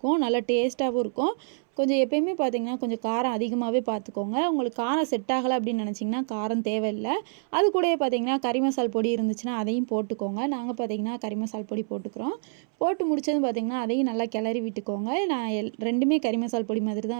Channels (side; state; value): left; silent; 60 dB below the other